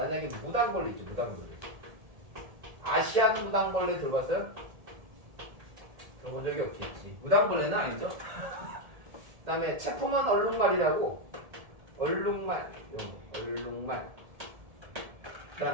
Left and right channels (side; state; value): left; late; 1.7 ms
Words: 무당벌레 있죠. 무당벌레. 아시안 무당벌레 들어봤어요? 들어본 적이 없겠지. 무당벌레는 아니죠. 그 다음에 체포먼 얼룩말이라고 얼룩말 그